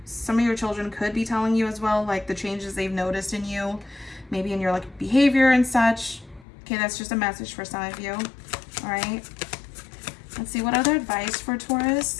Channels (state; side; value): drops out; right; at 6.5 s